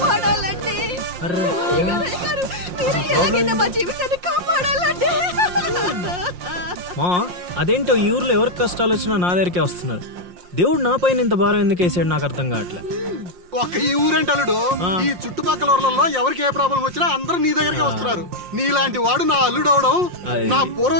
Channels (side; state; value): left; late; 5.6 ms